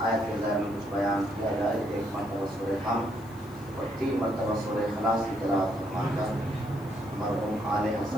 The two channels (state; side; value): noise; left; hiss, 26 dB below the sound